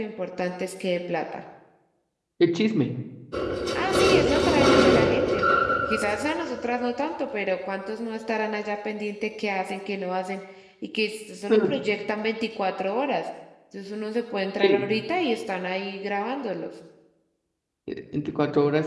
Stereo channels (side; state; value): both; identical; correlation 1.00